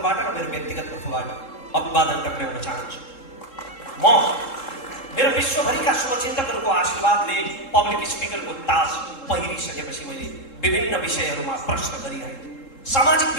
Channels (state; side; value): late; right; 3.7 ms